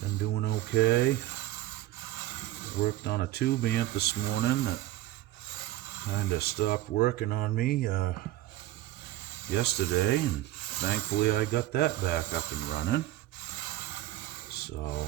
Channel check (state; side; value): quieter; left; 15.3 dB